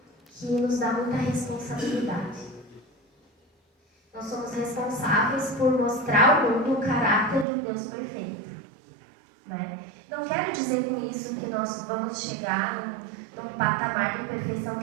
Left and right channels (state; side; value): drops out; left; at 7.5 s